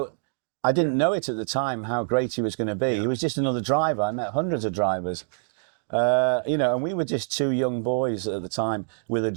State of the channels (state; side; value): silent; left; digital silence